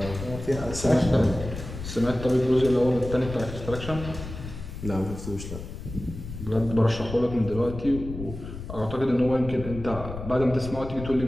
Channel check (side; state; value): left; noise; rumble, 10 dB below the sound